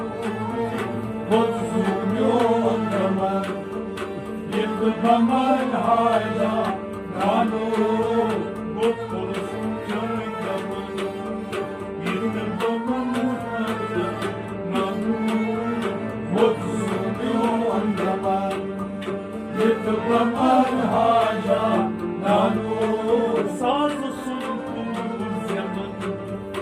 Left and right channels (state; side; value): identical; both; correlation 1.00